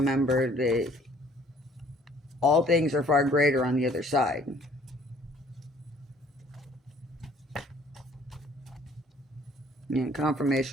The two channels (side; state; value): both; normal; correlation 0.58